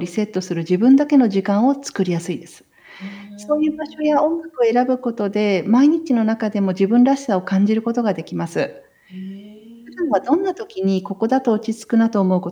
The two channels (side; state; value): both; identical; correlation 1.00